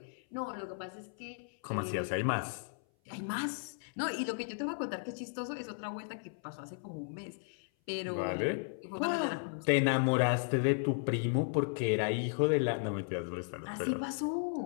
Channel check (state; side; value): silent; right; 54 dB below the other